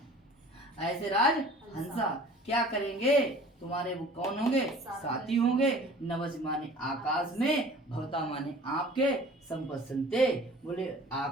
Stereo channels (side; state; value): both; normal; correlation 0.47